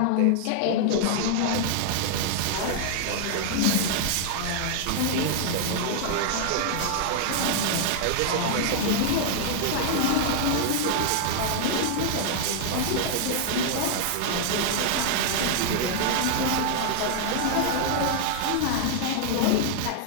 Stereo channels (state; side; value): different; both; correlation 0.00